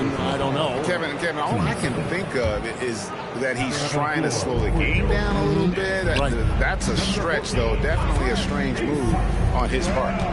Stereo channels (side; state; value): both; identical; correlation 1.00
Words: I don't know. Kevin, all I can think of is that he's trying to slow the game down a little bit. Right. That's a stretch, though. Definitely a strange move on his part.